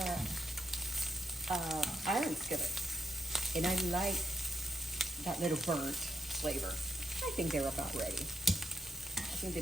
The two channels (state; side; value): normal; both; correlation 0.81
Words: iron skillet. And I like that little burnt flavor. I think they're about ready. I think